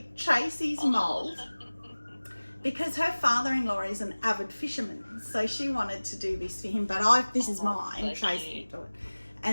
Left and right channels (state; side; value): inverted; both; correlation -1.00